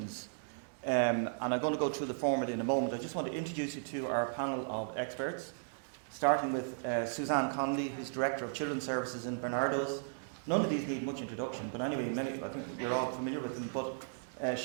and I'm going to go through the format in a moment. I just want to introduce you to our panel of experts, starting with Suzanne Connolly, who's Director of Children's Services in Barnardo's. None of these need much introduction, but anyway, I think you're all familiar with them. But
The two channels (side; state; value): left; silent; digital silence